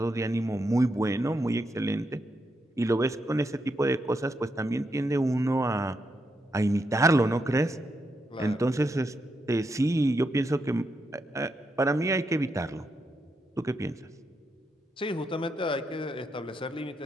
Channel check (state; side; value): normal; both; correlation 0.82